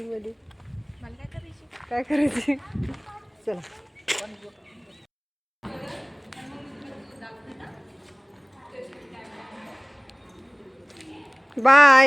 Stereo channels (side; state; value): both; identical; correlation 1.00